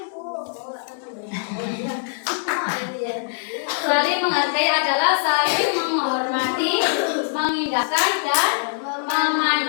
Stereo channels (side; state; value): right; silent; digital silence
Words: saling menghargai adalah saling menghormati, mengindahkan dan